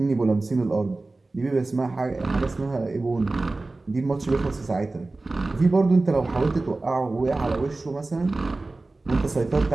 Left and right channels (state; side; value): quieter; left; 3.2 dB